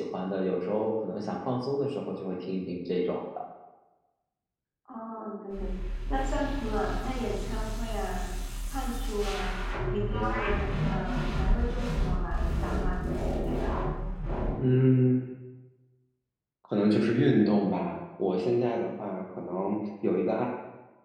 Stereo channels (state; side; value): identical; both; correlation 1.00